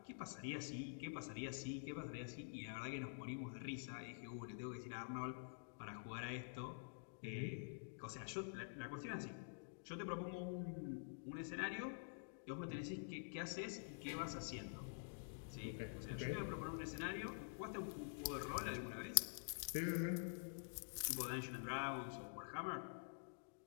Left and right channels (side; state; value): right; silent; digital silence